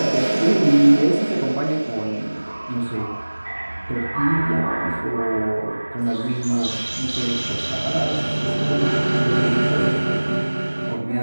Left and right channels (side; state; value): both; inverted; correlation -1.00